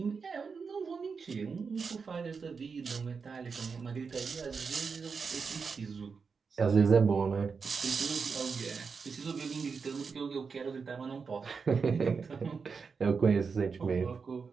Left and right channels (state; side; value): quieter; left; 5.3 dB